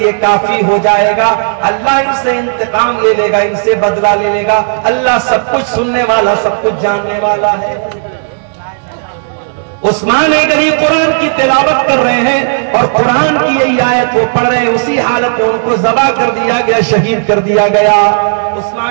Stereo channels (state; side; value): silent; left; digital silence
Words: काफी हो जाएगा, अल्लाह इनसे इंतकाम ले लेगा, इनसे बदला ले लेगा। अल्लाह सब कुछ सुनने वाला, सब कुछ जानने वाला है। उस्मान गनी कुरान की तिलावत कर रहे हैं और कुरान की यही आयत वो पढ़ रहे हैं, उसी हालत में उनको ज़बा कर दिया गया, शहीद कर दिया गया।